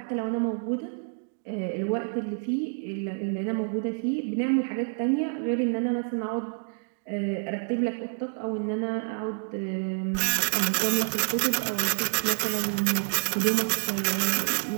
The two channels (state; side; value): silent; left; 59 dB below the other